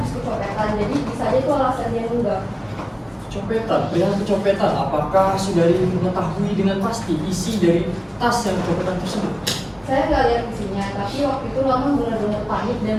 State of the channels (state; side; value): identical; both; correlation 1.00